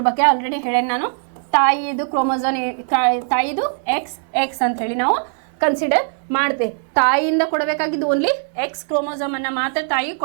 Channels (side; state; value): left; silent; digital silence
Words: ಬಗ್ಗೆ ಆಲ್ರೆಡಿ ಹೇಳೇನೆ ನಾನು. ತಾಯಿದು ಕ್ರೋಮೋಸೋಮ್, ತಾಯಿದು XX ಅಂತ ಹೇಳಿ ನಾವು ಕನ್ಸಿಡರ್ ಮಾಡ್ತೇವೆ. ತಾಯಿಯಿಂದ ಕೊಡಬೇಕಾಗಿದ್ದು ಓನ್ಲಿ X ಕ್ರೋಮೋಸೋಮ್ ಅನ್ನ ಮಾತ್ರ ತಾಯಿ